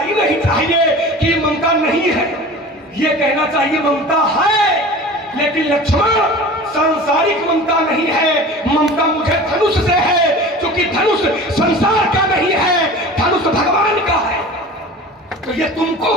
नहीं चाहिए कि ममता नहीं है, ये कहना चाहिए ममता है। लेकिन लक्ष्मण, सांसारिक ममता नहीं है, ममता मुझे धनुष से है, क्योंकि धनुष संसार का नहीं है, धनुष भगवान का है। तो ये तुमको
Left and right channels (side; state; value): both; normal; correlation 0.38